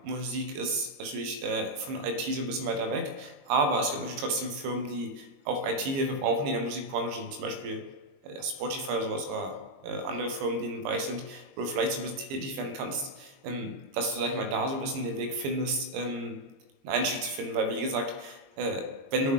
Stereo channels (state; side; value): late; left; 22 ms